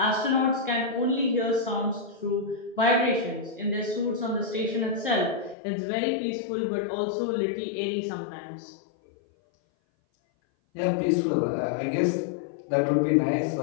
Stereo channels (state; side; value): drops out; right; at 5.6 s